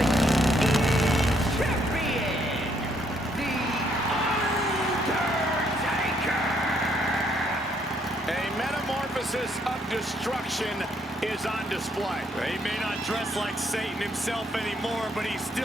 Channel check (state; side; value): normal; both; correlation 0.71